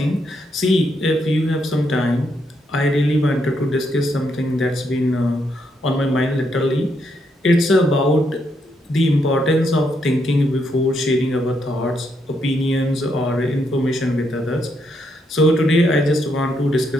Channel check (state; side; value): normal; both; correlation 0.77